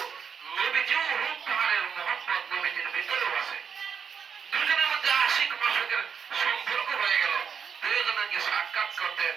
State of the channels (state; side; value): quieter; left; 6.8 dB